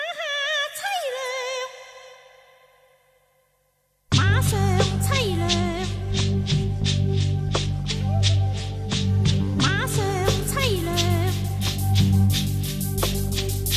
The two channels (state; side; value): identical; both; correlation 1.00